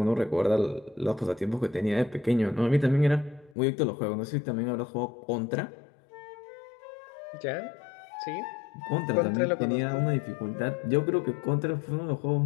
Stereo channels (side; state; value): right; drops out; at 3.6 s